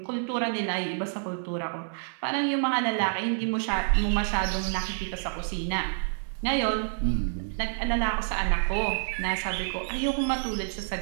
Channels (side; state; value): left; silent; digital silence